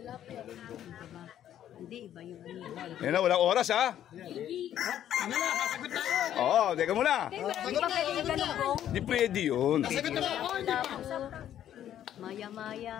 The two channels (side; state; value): right; quieter; 11.0 dB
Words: Hindi, iba yung Yan na, walang oras ha. Oo, teka muna. Di ba pwede yung ganun po? Di pwede yun.